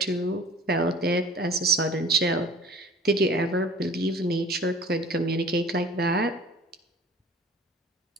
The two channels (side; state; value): both; normal; correlation 0.45